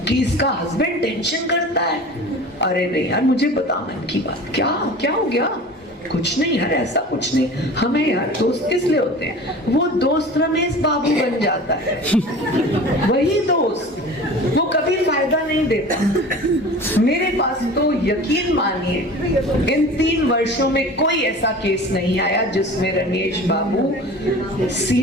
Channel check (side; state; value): both; normal; correlation 0.39